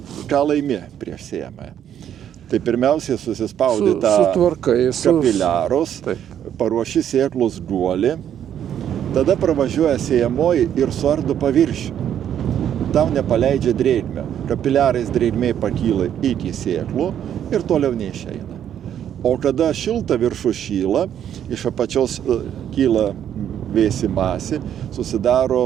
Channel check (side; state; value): left; quieter; 9.8 dB